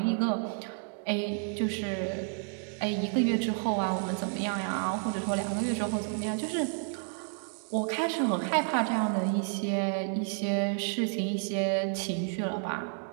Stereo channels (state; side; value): silent; left; 57 dB below the other